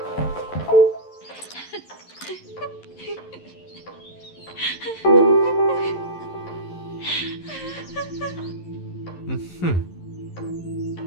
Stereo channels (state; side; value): late; right; 11 ms